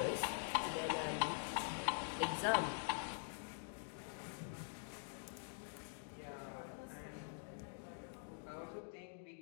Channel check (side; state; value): right; silent; digital silence